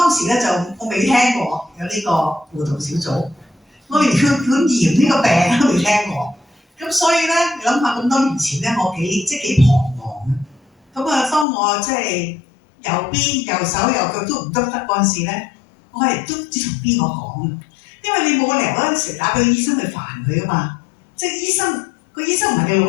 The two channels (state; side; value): drops out; right; at 11.5 s